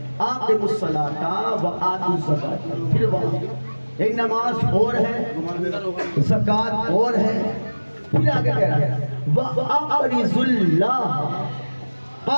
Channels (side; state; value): both; inverted; correlation -1.00